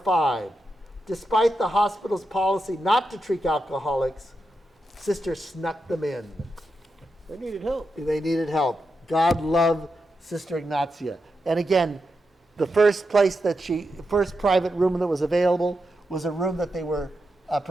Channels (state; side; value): normal; both; correlation 0.87